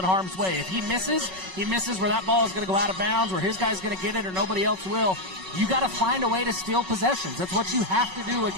harm's way. If he misses where that ball is going to go out of bounds, where his guy's going to get it or nobody else will. You got to find a way to steal possessions. That's what you have to do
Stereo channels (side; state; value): left; late; 5.4 ms